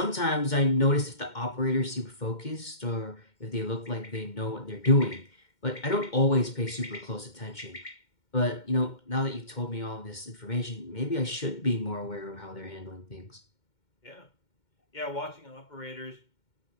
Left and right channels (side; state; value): right; late; 2.1 ms